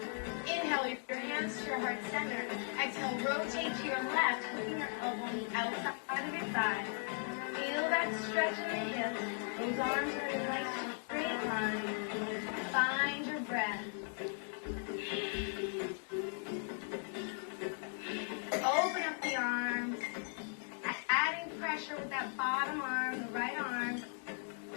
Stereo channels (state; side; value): silent; right; 53 dB below the other